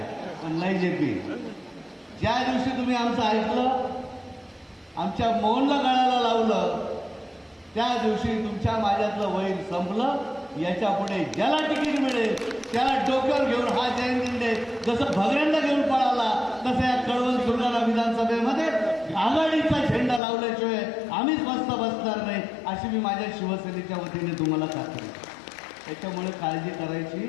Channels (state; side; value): drops out; right; at 20.2 s